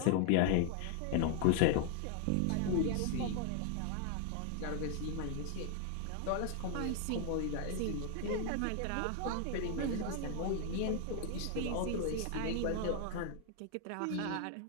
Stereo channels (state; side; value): different; both; correlation 0.00